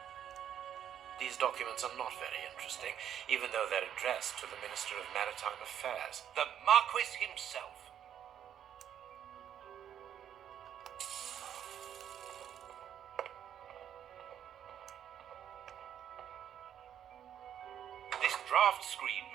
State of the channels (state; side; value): quieter; left; 9.7 dB